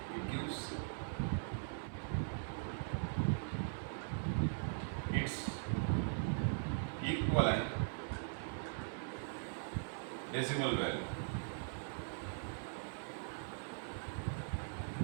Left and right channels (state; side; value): silent; left; 50 dB below the other